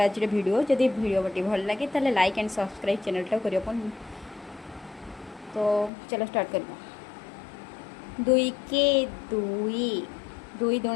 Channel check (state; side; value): drops out; right; at 5.9 s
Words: आज वीडियो। जदि वीडियो टी भल लगे ताले लाइक एंड सब्सक्राइब चैनल टा करियो। तो चलो स्टार्ट करवा। 2 के 2 2